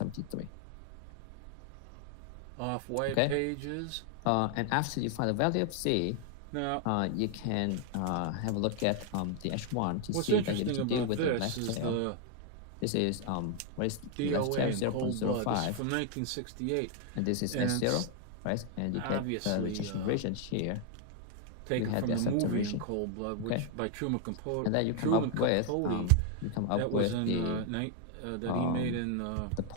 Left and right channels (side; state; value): both; different; correlation 0.00